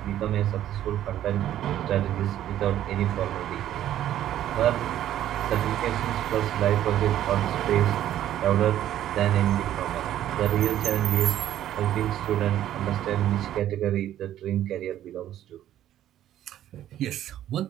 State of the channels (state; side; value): quieter; left; 12.0 dB